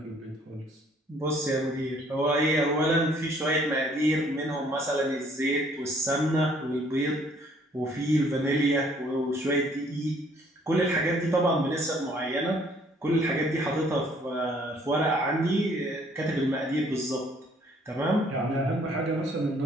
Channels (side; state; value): both; normal; correlation 0.61